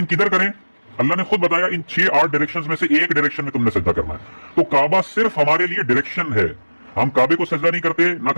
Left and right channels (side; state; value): both; inverted; correlation -1.00